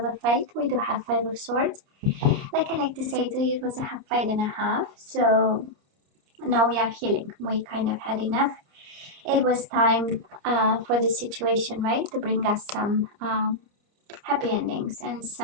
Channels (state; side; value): late; left; 29 ms